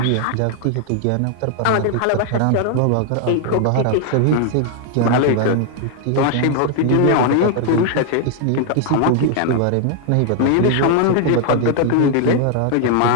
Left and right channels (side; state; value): both; different; correlation 0.00